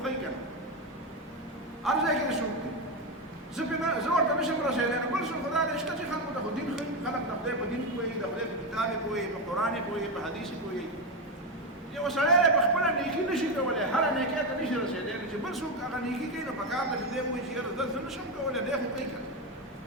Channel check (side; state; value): both; normal; correlation 0.12